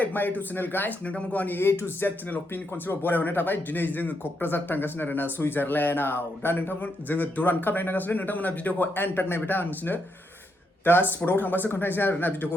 my YouTube channel guys. नोंथांमोनखौ आंनि A to Z चेनेलाव fin खनसेबाव बरायहरनाय थाबाय। दिनै जोङो क'क्राझार थांगासिनो आरोना सुइजारलेन्डआव। दा नोंथांमोन जोङो दुरान काप नायगासिनो। नोंथांमोना भिडिअखौ एन्ड टाक नायबाय था आं नोंसोरनो दा स्पटआव थांबासो खोन्थानोसै आरोना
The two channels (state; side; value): normal; both; correlation 0.80